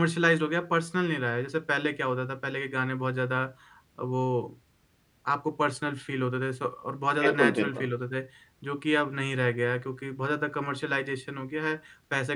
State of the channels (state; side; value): identical; both; correlation 1.00